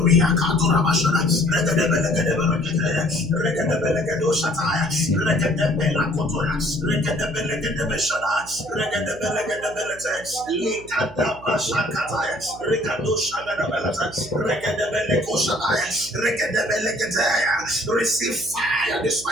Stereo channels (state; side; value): noise; right; hum, 18 dB below the sound